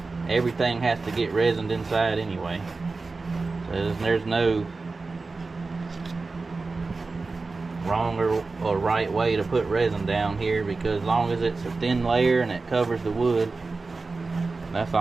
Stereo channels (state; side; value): quieter; left; 3.9 dB